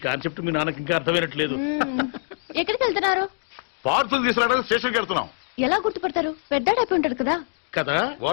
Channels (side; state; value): right; silent; digital silence